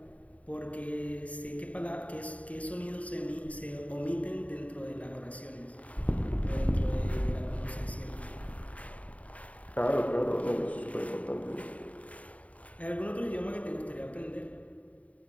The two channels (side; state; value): right; late; 0.068 ms